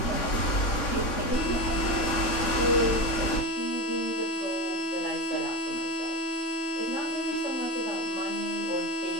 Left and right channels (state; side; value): late; right; 3.6 ms